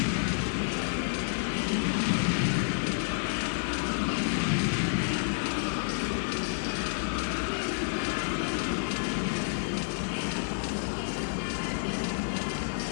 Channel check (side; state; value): right; silent; digital silence